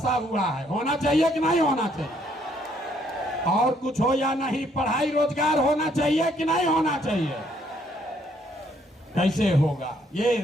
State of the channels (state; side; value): normal; both; correlation 0.68